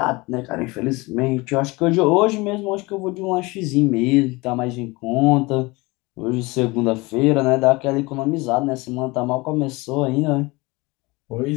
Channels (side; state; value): right; quieter; 23.8 dB